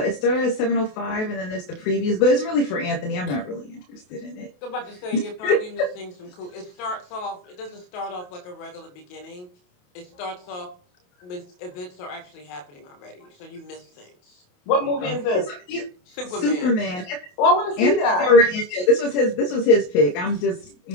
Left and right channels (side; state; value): right; late; 28 ms